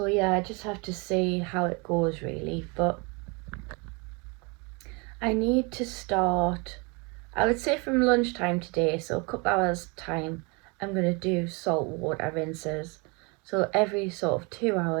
yeah, I just have to see how it goes really, but I need to start, I would say from lunchtime today, so a couple hours time, I'm going to do salt water rinses. So every sort of 2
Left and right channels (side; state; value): left; quieter; 30.3 dB